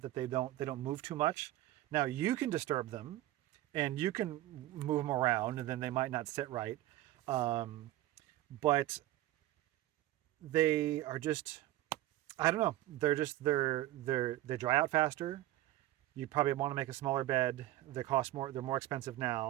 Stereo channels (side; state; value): left; quieter; 15.5 dB